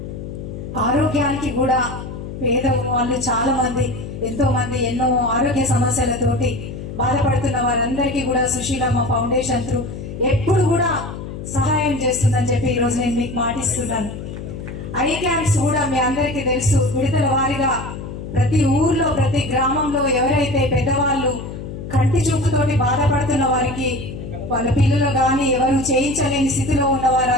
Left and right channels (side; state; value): left; noise; hum, 9 dB below the sound